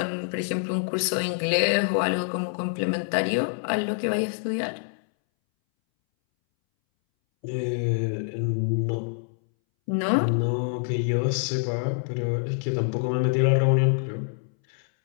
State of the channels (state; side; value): silent; right; 61 dB below the other